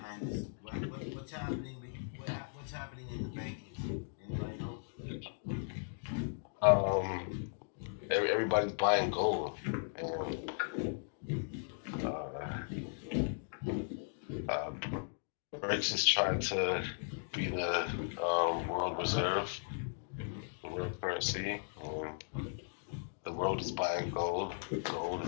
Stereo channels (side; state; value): right; silent; digital silence